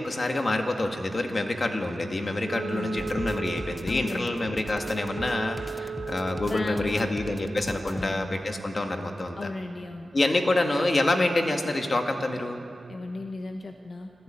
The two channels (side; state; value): both; normal; correlation 0.94